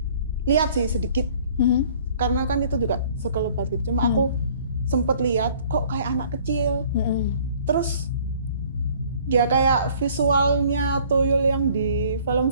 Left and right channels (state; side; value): inverted; both; correlation -0.55